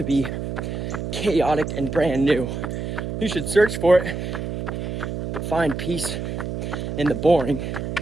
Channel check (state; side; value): noise; right; hum, 5 dB below the sound